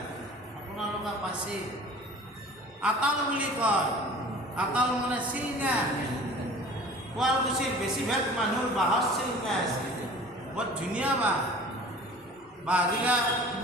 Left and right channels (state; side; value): normal; both; correlation 0.44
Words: আপোনালোকে পাচি আতাল বুলি কয়। আতাল মানে চিলঙা। শুৱালকুছিৰ বেছিভাগ মানুহৰ বাঁহৰ চিলঙা আছে, বৰ ধুনীয়া বাঁহ। বাঁহগিলা